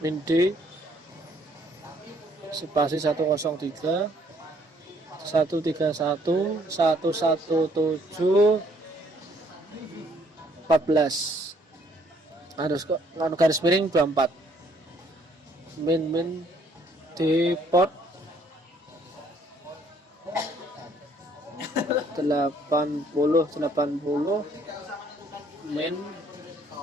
min D spasi 103 131 117 14 harus garis miring 24 min di port 80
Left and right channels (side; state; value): both; normal; correlation 0.64